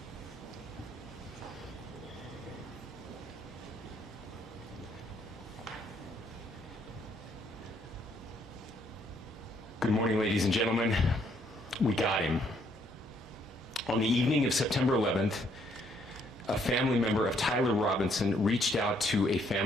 Good morning, ladies and gentlemen. We got him. On the evening of September 11th, a family member of Tyler Robinson reached out to a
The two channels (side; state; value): both; normal; correlation 0.69